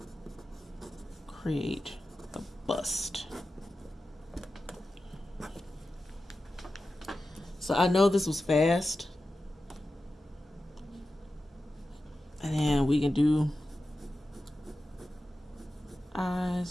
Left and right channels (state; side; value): normal; both; correlation 0.93